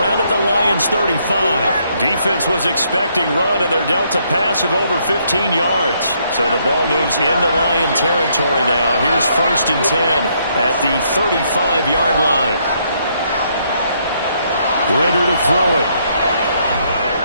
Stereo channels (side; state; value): both; inverted; correlation -0.72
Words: at the Lions' 35. Defense was expecting run, and they're dealt a pass of over 15 yards. So the ball moves into Lion territory now. Here's 1st and 10 at the 35-yard line. Ritter to throw it.